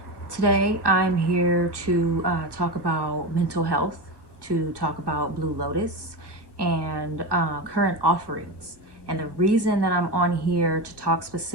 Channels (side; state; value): left; late; 1.1 ms